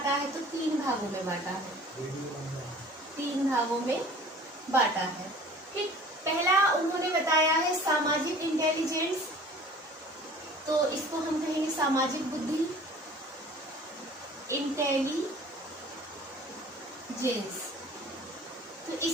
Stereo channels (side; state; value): both; normal; correlation 0.46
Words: है? तो 3 भागों में बांटा है। 3 भागों में बांटा है। ठीक, पहला उन्होंने बताया है सामाजिक इंटेलिजेंस, तो इसको हम कहेंगे सामाजिक बुद्धि, इंटेलिजेंस। तो